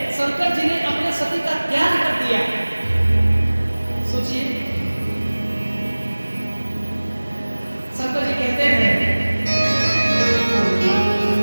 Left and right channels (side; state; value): both; inverted; correlation -1.00